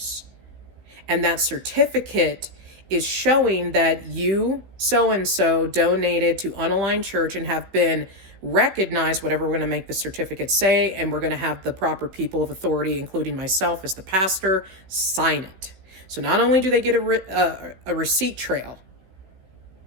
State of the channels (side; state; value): left; late; 16 ms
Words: And that certificate is showing that you, so-and-so, donated to Unaligned Church and have been recognized, whatever we're going to make the certificate say, and we're going to have the proper people of authority, including myself as the pastor, sign it. So not only do they get a receipt trail,